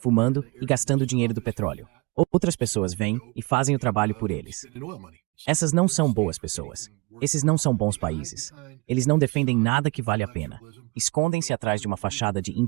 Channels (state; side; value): quieter; left; 26.6 dB